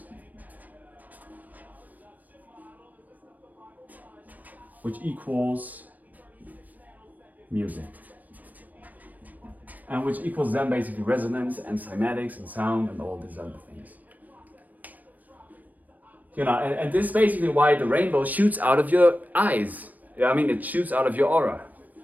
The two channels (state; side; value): late; left; 0.081 ms